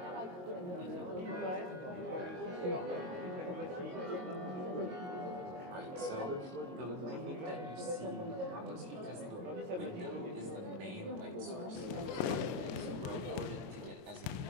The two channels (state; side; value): late; left; 22 ms